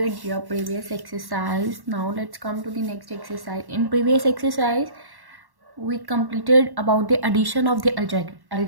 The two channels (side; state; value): left; late; 1.1 ms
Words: your previous exercise. Now let's come to the next exercise. In previous exercise, we completed about the addition of the